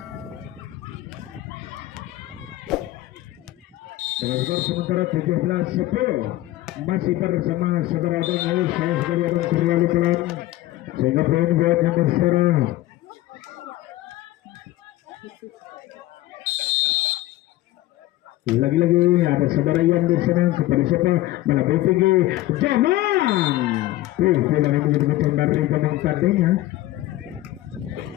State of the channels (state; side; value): quieter; right; 16.4 dB